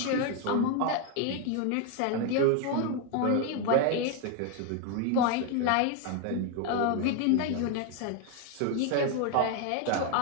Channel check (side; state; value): both; different; correlation 0.01